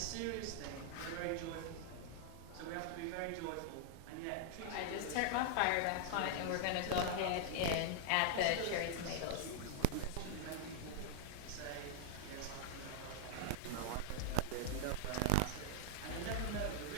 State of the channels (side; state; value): both; different; correlation -0.01